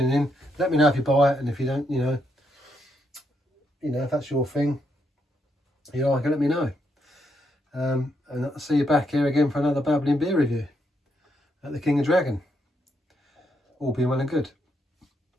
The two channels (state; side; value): normal; both; correlation 0.78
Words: in. Let me know if you buy it, and if you don't, you know, if that's your thing, you like it, let me know. And I'll see you back here again for another Babbling beer review at the King&Dragon. All being well and good.